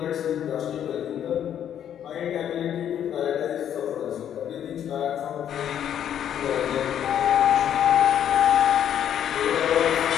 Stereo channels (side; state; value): right; quieter; 9.8 dB